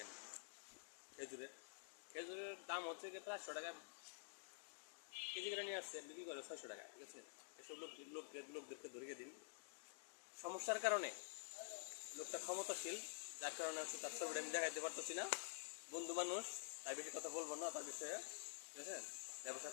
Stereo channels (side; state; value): right; silent; digital silence